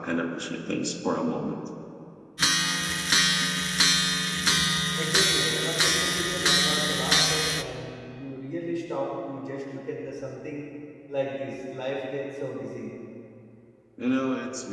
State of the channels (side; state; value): both; identical; correlation 1.00